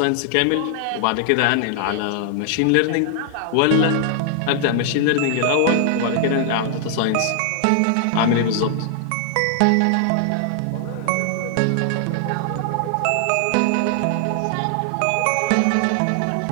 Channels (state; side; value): different; both; correlation 0.00